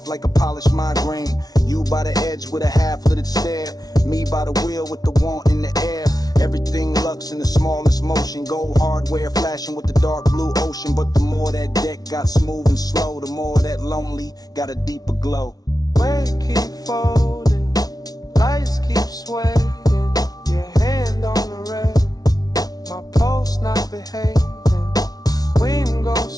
like a polished migraine. You by the edge with a half-littered stare. Me by the wheel with the want in the air. Everything lux in the smallest motion. Gold hardware flashing with the dark blue ocean. But the more that deck got smooth and slow, the more that lonely got a deeper glow. Weight keep folding, lights keep swaying. Your hand on the rail, my pulse not behaving. Wind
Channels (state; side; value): late; right; 0.19 ms